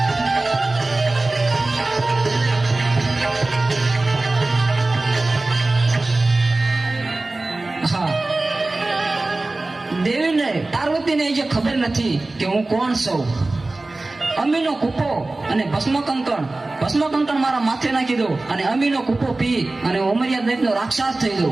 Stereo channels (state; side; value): quieter; left; 3.0 dB